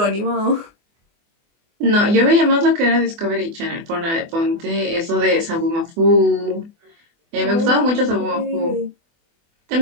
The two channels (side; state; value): left; late; 24 ms